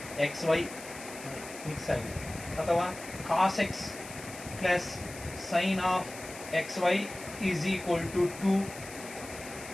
x y mix ಆಗಿದೆ. ಅಥವಾ cos x plus sine of x y is equal to 2.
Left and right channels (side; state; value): left; noise; hiss, 14 dB below the sound